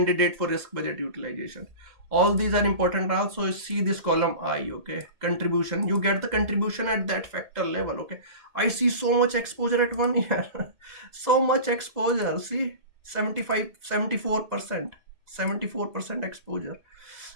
for risk budget utilization. All these are important. Also see this column I. Okay, contribution, you get the contribution at that factor level. Okay, I see so much exposure at 1 year. So much exposure. See, 75 74%, 74% exposure.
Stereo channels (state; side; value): late; left; 2.0 ms